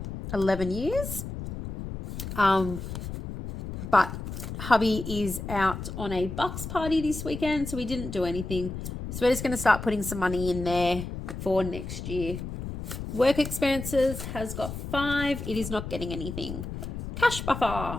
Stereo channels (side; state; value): left; noise; rumble, 7 dB below the sound